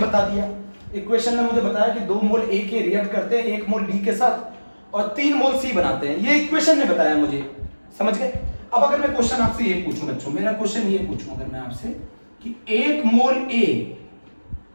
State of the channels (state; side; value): inverted; both; correlation -1.00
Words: दिया, इक्वेशन ने मुझे बताया कि 2 मोल A के रिएक्ट करते हैं 1 मोल B के साथ और 3 मोल C बनाते हैं। ये इक्वेशन ने बताया मुझे, समझ गए? अब अगर मैं क्वेश्चन आपसे ये पूछूं बच्चों, मेरा क्वेश्चन ये पूछूं अगर मैं आपसे कि 1 मोल A